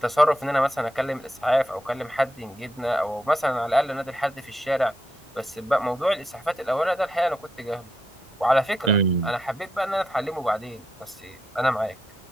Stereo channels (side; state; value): both; normal; correlation 0.82